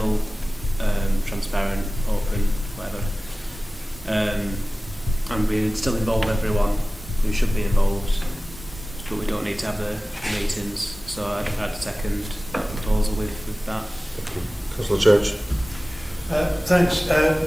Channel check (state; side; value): normal; both; correlation 0.97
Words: transparent, open, whatever, and we still involve everyone who should be involved, but we don't need to have the meetings. So I'd second that proposal with that. Councillor Church? Thanks,